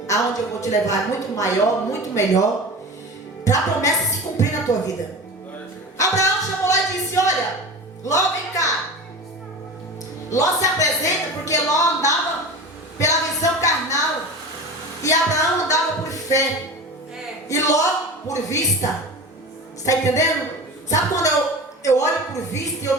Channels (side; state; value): both; normal; correlation 0.32